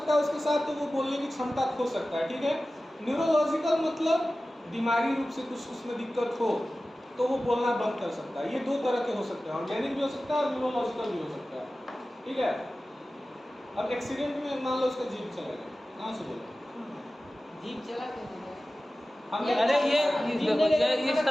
है उसके साथ, तो वो बोलने की क्षमता खो सकता है, ठीक है? न्यूरोलॉजिकल मतलब दिमागी रूप से कुछ उसमें दिक्कत हो तो वो बोलना बंद कर सकता है। ये 2 तरह के हो सकते हैं, ऑर्गेनिक भी हो सकता है और न्यूरोलॉजिकल भी हो सकता है, ठीक है? अब एक्सीडेंट में मान लो उसका जीभ चला गया, कहाँ से बोले? जीभ चला के हमने अरे ये जीभ नहीं लेगा तो इस खाना तरह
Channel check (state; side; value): normal; both; correlation 0.96